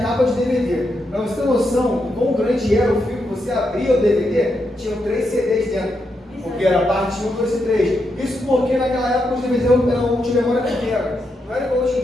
de DVD. Pra você ter noção de quão grande era o filme, você abria o DVD, tinham 3 CDs dentro. Porque era parte 1, 2 e 3. Isso porque naquela época os DVDs eram multimemória pequena. Não era igual hoje em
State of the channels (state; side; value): normal; both; correlation 0.83